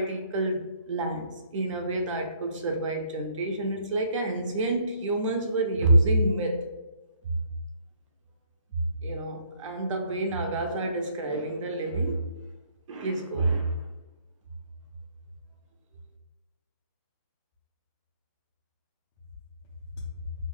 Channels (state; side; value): inverted; both; correlation -0.65